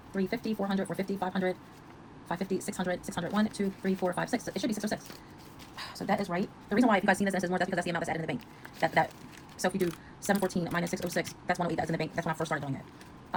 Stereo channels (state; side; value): identical; both; correlation 1.00